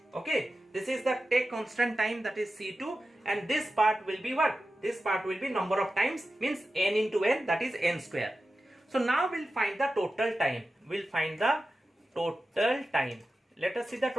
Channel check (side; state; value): both; normal; correlation 0.93